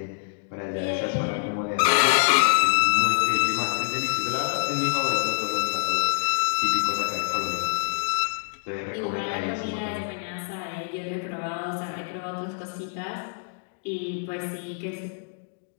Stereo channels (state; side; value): silent; right; digital silence